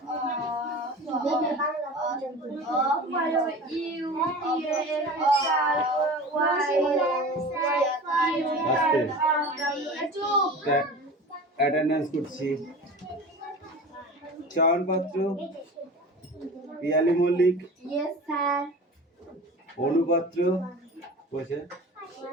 অ্যাটেন্ডেন্স করছি। চয়ন পাত্র, পিয়ালি মল্লিক, অনুপাত্র,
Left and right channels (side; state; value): both; normal; correlation 0.36